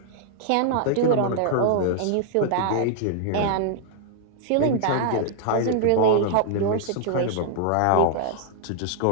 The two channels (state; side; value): different; both; correlation -0.01